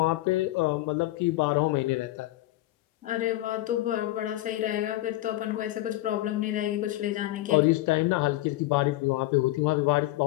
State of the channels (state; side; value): quieter; right; 16.7 dB